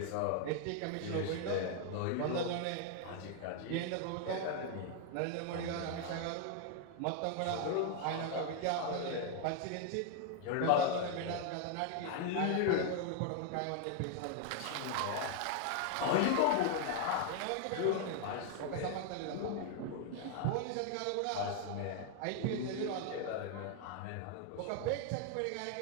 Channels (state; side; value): different; both; correlation 0.00